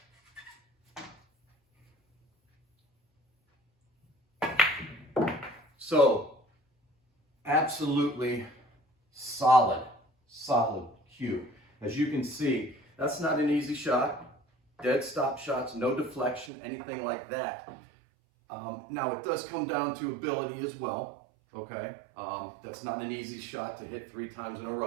So, absolutely solid cue. As you can see, that's not an easy shot. Dead stop shots, no deflection, anything like that. Now, it does come down to ability as well, okay? That's not an easy shot to hit 3 times in a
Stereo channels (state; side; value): drops out; left; at 16.5 s